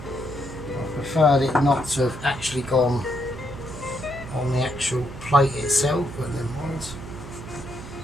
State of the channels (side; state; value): right; noise; hum, 12 dB below the sound